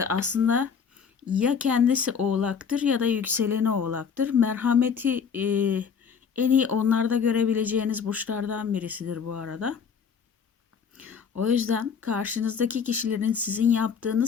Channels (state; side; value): quieter; right; 6.6 dB